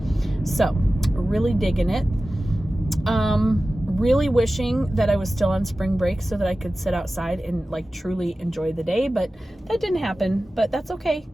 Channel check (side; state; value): both; normal; correlation 0.95